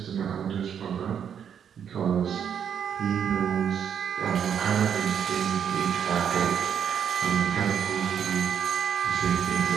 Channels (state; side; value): quieter; left; 8.2 dB